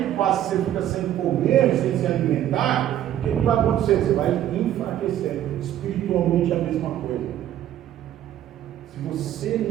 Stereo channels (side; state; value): left; quieter; 11.7 dB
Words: passa você fica sem comer, sem se alimentar, o que vai acontecer? Você vai enfraquecer. Espiritualmente é a mesma coisa. Se você